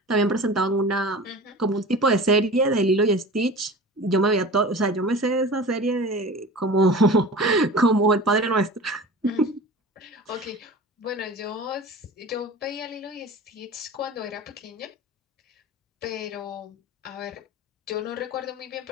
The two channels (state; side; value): normal; both; correlation 0.37